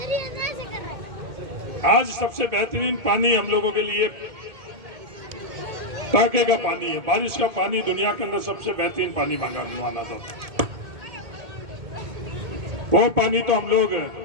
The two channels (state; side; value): late; left; 2.1 ms